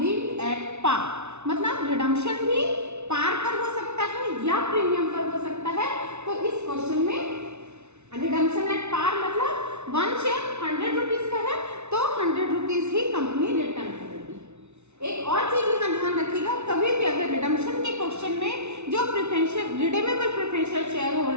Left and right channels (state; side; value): late; left; 0.82 ms